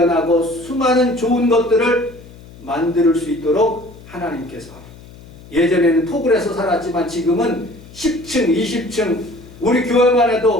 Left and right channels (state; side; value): noise; left; hum, 20 dB below the sound